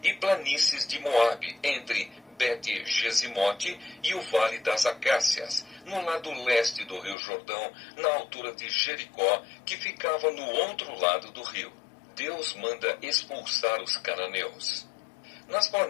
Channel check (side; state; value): right; drops out; at 7.2 s